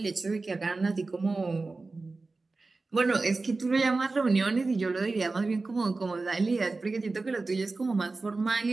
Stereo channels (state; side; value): quieter; left; 3.6 dB